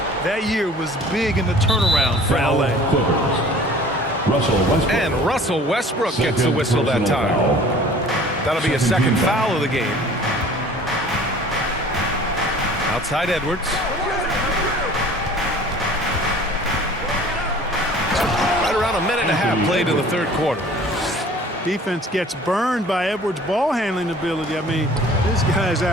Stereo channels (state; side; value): normal; both; correlation 0.48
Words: That year was big in the turnaround for LA. And Russell Westbrook gets the whistle that time. That'll be a second foul of the game. Outside Edwards. Right around a minute and a half played in the third quarter. Defense gets burned by Edwards' ball handling ability. I mean, this guy's